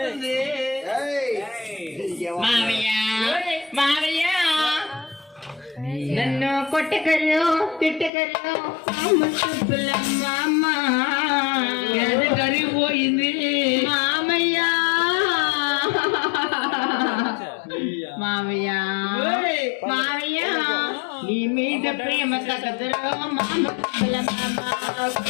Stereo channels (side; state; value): right; drops out; at 8.1 s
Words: మామయ్య మామయ్య నన్ను కొట్టకరు తిట్టకరు అమ్మ కరిగిపోయింది మామయ్య. మామయ్య మామయ్య నీ మీద ప్రేమ తగదురో మామ